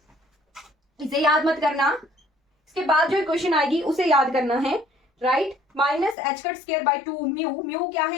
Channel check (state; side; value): drops out; right; at 6.2 s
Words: इसे याद मत करना, इसके बाद जो इक्वेशन आएगी उसे याद करना है, right. Minus H cut square by 2 mu. Mu क्या